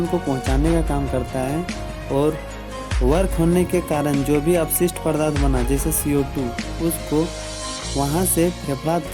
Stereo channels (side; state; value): both; identical; correlation 1.00